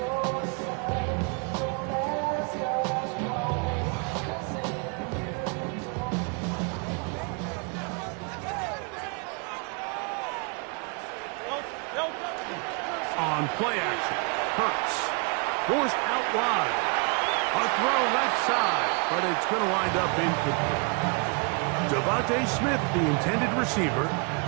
On play action, Hurts forced out wide. A throw left side, but it's going to wind up incomplete. Devontae Smith, the intended receiver,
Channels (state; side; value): quieter; left; 34.8 dB